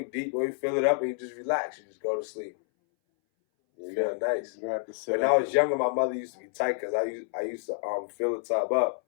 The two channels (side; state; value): right; silent; 59 dB below the other